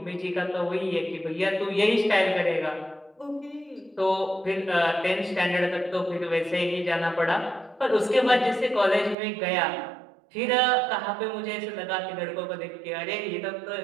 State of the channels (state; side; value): drops out; left; at 9.2 s